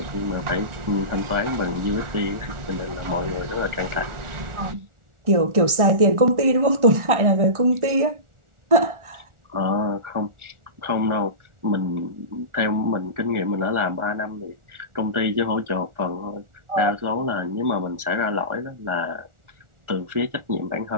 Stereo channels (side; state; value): left; late; 1.4 ms